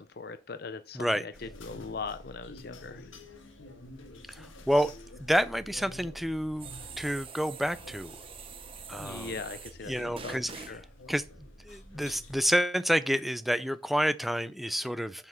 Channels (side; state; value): both; normal; correlation 0.91